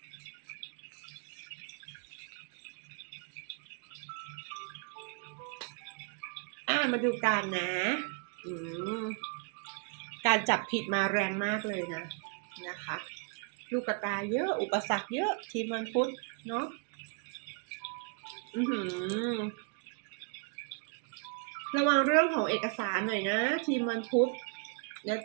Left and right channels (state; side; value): quieter; left; 37.5 dB